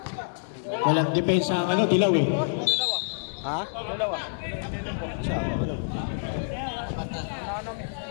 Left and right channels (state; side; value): silent; right; digital silence